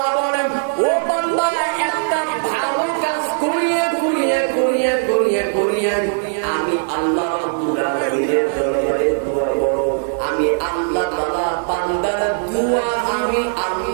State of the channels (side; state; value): left; silent; digital silence